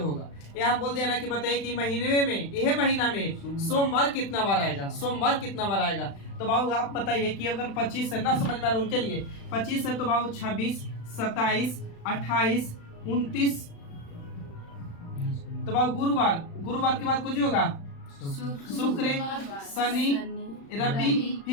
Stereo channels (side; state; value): right; late; 36 ms